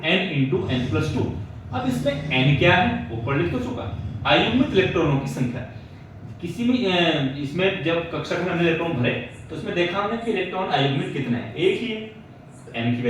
n+2। अब इसमें n क्या है ऊपर लिख तो चुका, अयुग्मित इलेक्ट्रॉनों की संख्या। किसी भी इसमें जब कक्षक में हमने इलेक्ट्रॉन भरे तो उसमें देखा हमने कि इलेक्ट्रॉन अयुग्मित कितने हैं? एक ही है, तो n की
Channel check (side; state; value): both; identical; correlation 1.00